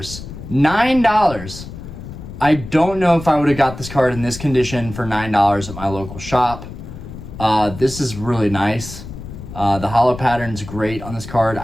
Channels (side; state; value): left; noise; rumble, 12 dB below the sound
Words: $9. I don't know if I would have got this card in this condition for $9 at my local shop. This is really nice. The holo pattern's great on this card.